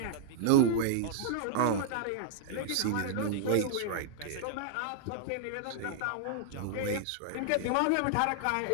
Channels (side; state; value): both; different; correlation -0.01